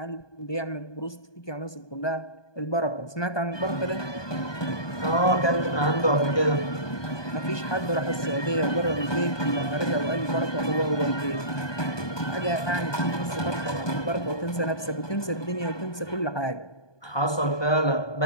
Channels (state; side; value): late; right; 1.2 ms